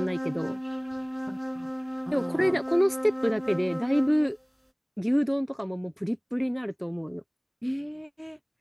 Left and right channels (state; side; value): identical; both; correlation 1.00